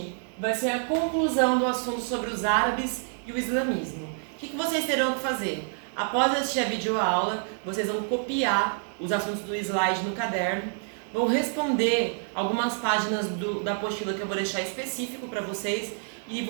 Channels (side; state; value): left; silent; 55 dB below the other